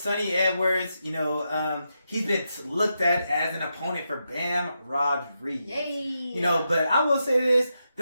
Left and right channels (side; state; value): both; inverted; correlation -0.85